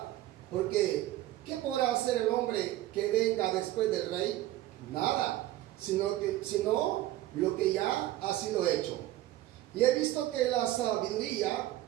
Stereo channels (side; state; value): left; quieter; 15.3 dB